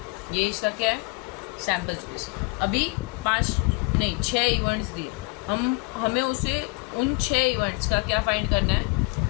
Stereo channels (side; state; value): right; quieter; 28.8 dB